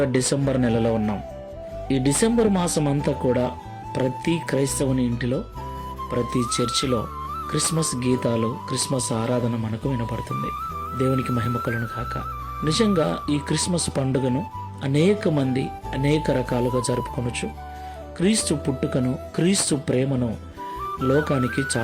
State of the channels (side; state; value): both; identical; correlation 1.00